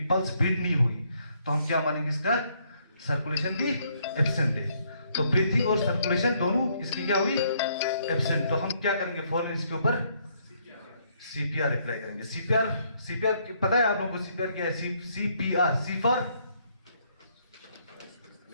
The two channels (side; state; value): both; inverted; correlation -0.70